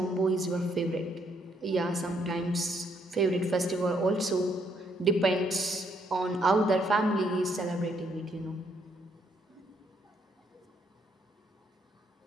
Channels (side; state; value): both; normal; correlation 0.71